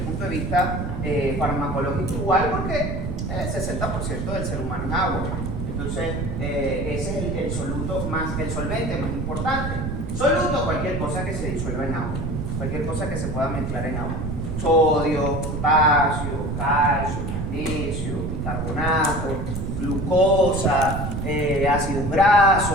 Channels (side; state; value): right; noise; rumble, 3 dB below the sound